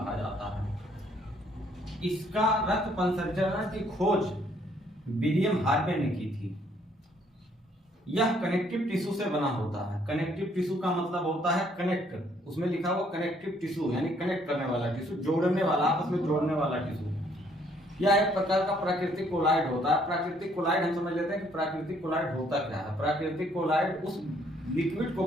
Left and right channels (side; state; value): both; normal; correlation 0.66